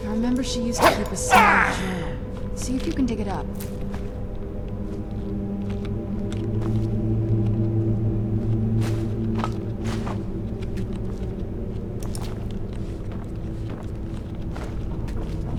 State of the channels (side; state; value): both; identical; correlation 1.00